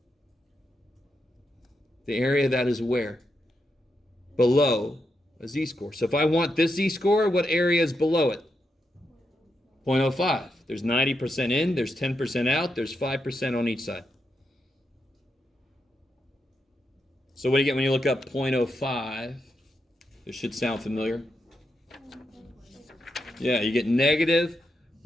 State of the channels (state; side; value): normal; both; correlation 0.84